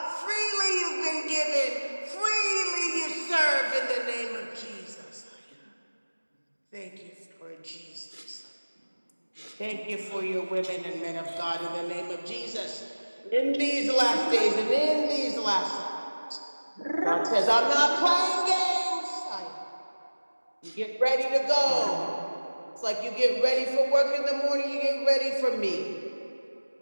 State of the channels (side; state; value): both; inverted; correlation -1.00